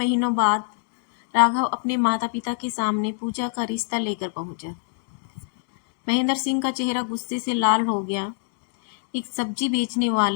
बाद राघव अपने माता पिता के सामने पूजा का रिश्ता लेकर पहुंचा। महेंद्र सिंह का चेहरा गुस्से से लाल हो गया। एक सब्जी बेचने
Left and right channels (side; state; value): right; silent; digital silence